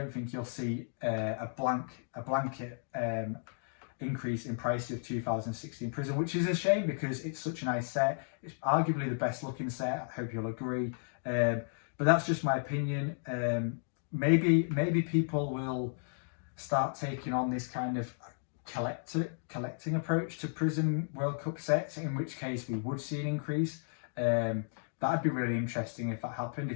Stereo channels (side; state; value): right; silent; digital silence